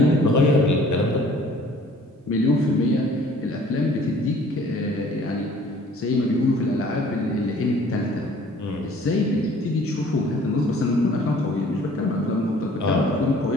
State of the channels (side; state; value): both; normal; correlation 0.53